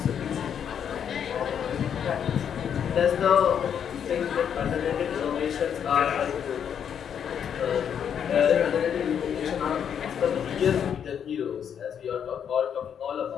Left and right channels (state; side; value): quieter; right; 8.3 dB